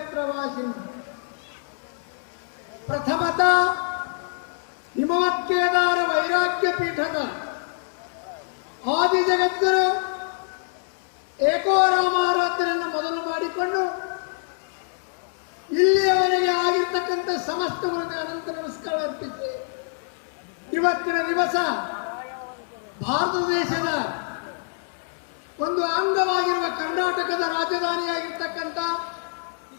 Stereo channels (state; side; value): silent; right; 62 dB below the other